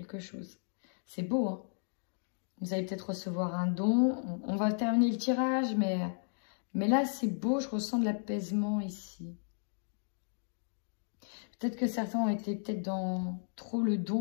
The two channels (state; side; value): silent; right; digital silence